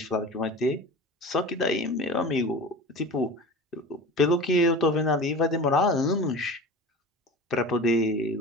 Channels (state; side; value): normal; both; correlation 0.34